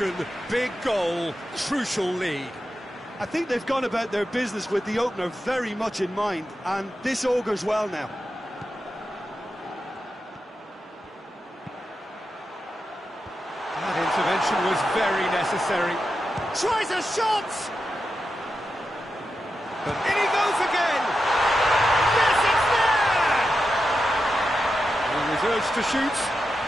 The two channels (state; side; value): normal; both; correlation 0.89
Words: big goal, crucial lead. I think they've gone about their business with the opener very much in mind, and this augurs well now. That intervention was very necessary. Tries a shot! But in he goes again! Yes, it's there! He was urged to shoot,